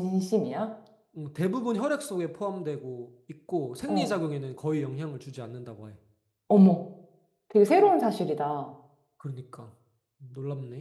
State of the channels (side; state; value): both; identical; correlation 1.00